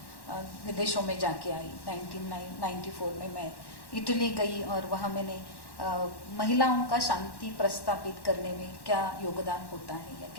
विदेशों में जाके आई। 1994 में मैं इटली गई और वहाँ मैंने महिलाओं का शांति प्रस्तापित करने में क्या योगदान होता है या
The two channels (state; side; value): late; right; 1.1 ms